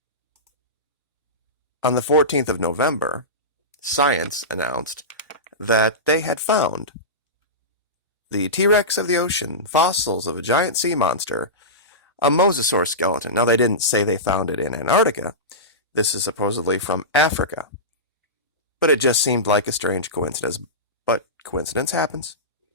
on the 14th of November, Science announced that they had found the T-Rex of the ocean, fossils of a giant sea monster, a mosasaur skeleton. Now, they didn't say they found it in Antarctica. This is supposedly from Africa. But it just seemed like a strange coincidence. But coincidence happens.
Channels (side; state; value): both; normal; correlation -0.18